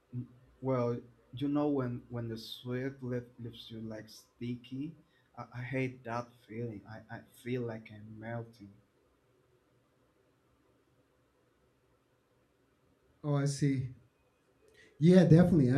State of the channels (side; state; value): both; identical; correlation 1.00